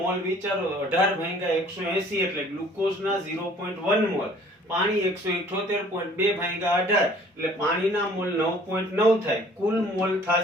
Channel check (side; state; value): both; normal; correlation 0.54